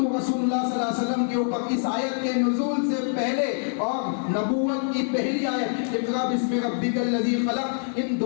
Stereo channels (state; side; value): silent; right; digital silence